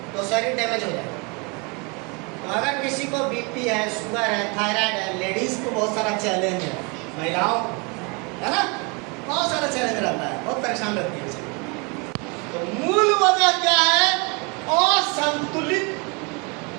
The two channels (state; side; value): quieter; left; 30.8 dB